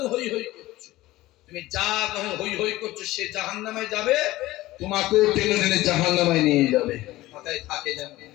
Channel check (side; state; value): right; quieter; 17.4 dB